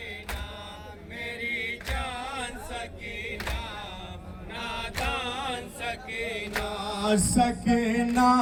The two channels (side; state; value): both; identical; correlation 1.00